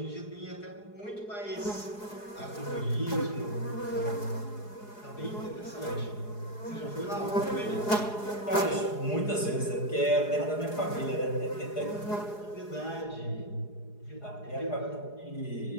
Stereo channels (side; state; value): right; late; 4.8 ms